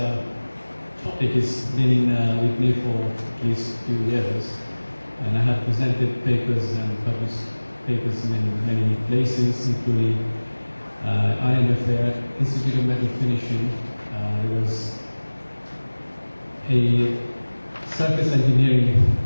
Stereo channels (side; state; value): both; inverted; correlation -1.00